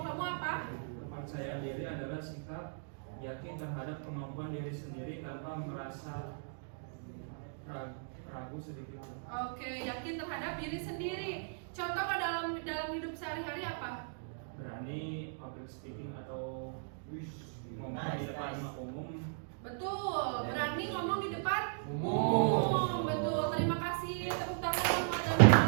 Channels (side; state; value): left; silent; digital silence